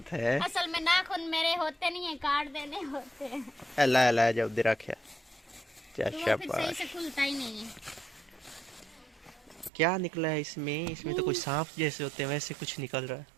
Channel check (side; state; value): left; drops out; at 9.7 s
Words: है। असल में नाखून मेरे होते नहीं है, काट देने होते हैं, अल्लाह अल्लाह, जब दे रखे क्या तो वो फिर सही से शाबाश। खुलता ही नहीं है। क्या निकला है इसमें? इसमें तो कोई सांप जैसे होते हैं वैसे कुछ निकल रहा है।